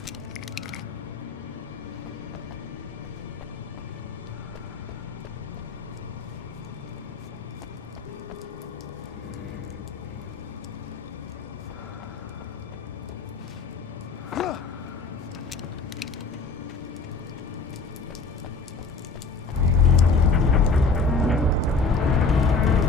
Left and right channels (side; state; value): right; quieter; 4.1 dB